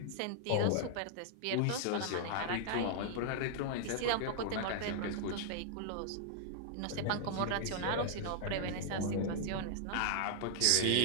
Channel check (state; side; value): different; both; correlation -0.01